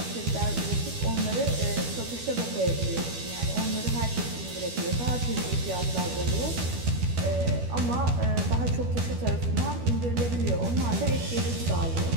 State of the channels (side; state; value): left; late; 12 ms